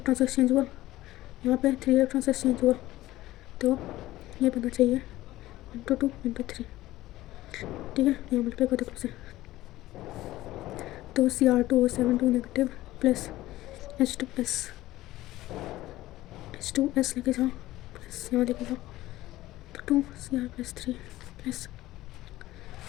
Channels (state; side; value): quieter; right; 16.3 dB